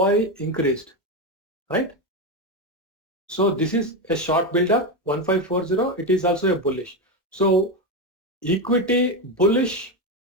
increased, right? So this is a short build-up, 1540. It is also a bullish. So equity bullish,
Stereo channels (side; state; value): both; normal; correlation 0.12